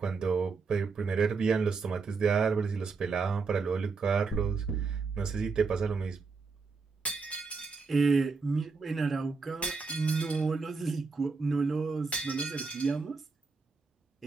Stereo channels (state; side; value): quieter; left; 4.6 dB